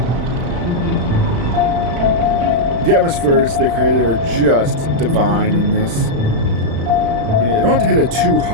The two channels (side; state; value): left; late; 35 ms